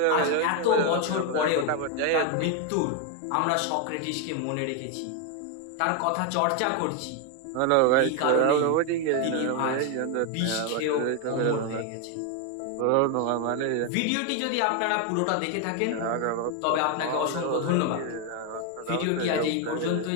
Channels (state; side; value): different; both; correlation 0.01